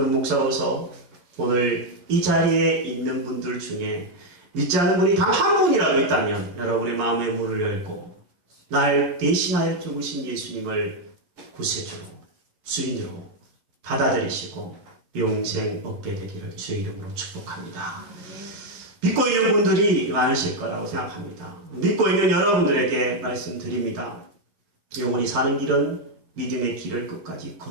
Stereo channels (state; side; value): late; left; 11 ms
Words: 목사로서 오늘 이 자리에 있는 분들 중에 믿지 않는 분이 단 한 분이라도 있다면 여러분의 마음의 문을 열고 날 대신하여 죽으신 예수님을 구세주로 주인으로 받아들이시고 영생 얻게 되기를 주의 이름으로 축복합니다. 믿고 있는 분들이 많으실 거라고 생각합니다. 믿고 있는 여러분들에게 말씀드립니다. 영원히 사는 길은 믿음의 길을 끝까지